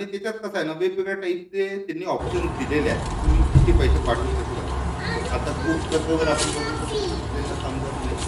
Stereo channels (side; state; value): both; identical; correlation 1.00